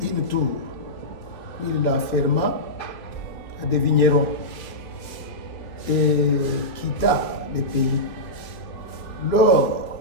une tour, puis il l'enferma à des vignerons et quitta le pays.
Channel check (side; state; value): right; late; 3.1 ms